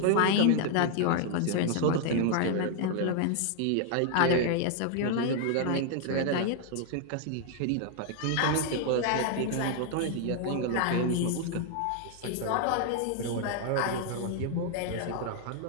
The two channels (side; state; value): both; different; correlation 0.00